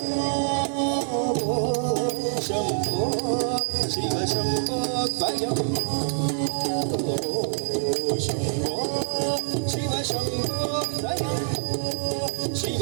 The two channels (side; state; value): left; silent; digital silence